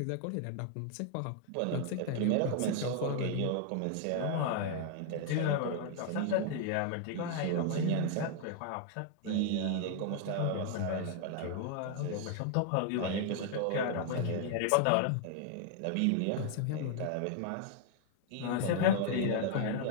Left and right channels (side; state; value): both; different; correlation 0.00